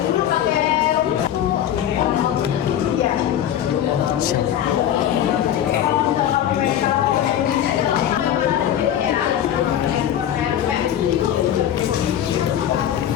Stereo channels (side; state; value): right; quieter; 10.6 dB